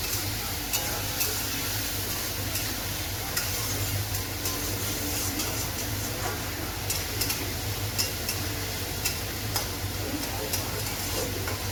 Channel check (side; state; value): both; identical; correlation 1.00